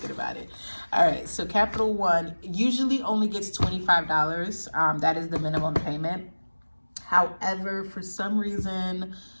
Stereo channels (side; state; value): both; inverted; correlation -1.00